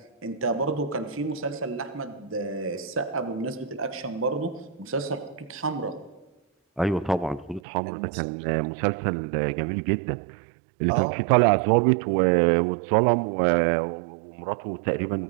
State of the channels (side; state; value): left; drops out; at 7.6 s